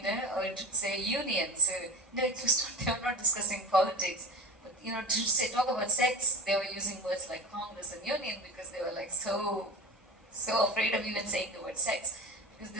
it would say union. So, it was not, they were not discussing politics. But, to talk about sex, they were using words like Congress and union because they were like so afraid of even saying the word sex. Because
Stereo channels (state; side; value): normal; both; correlation 0.32